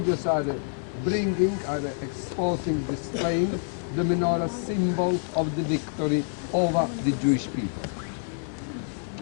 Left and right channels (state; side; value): silent; right; 60 dB below the other